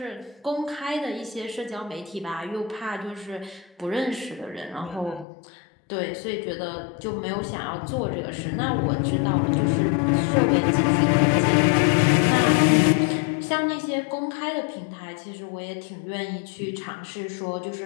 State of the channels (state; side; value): drops out; right; at 5.2 s